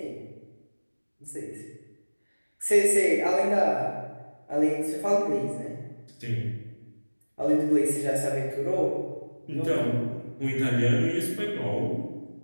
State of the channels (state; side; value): inverted; both; correlation -1.00